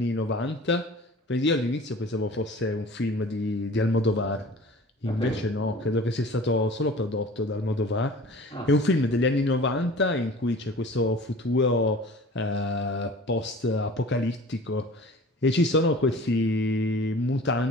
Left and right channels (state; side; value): normal; both; correlation 0.43